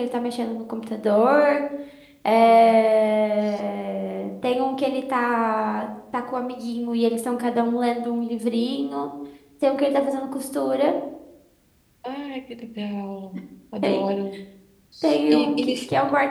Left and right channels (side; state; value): both; identical; correlation 1.00